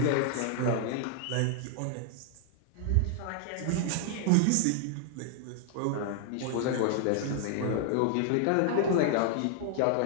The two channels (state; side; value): different; both; correlation 0.00